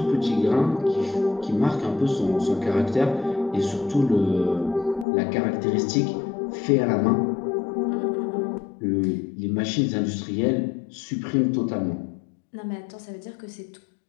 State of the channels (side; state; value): right; drops out; at 5.1 s